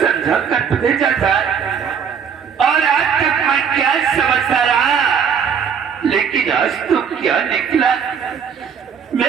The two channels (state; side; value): quieter; left; 7.2 dB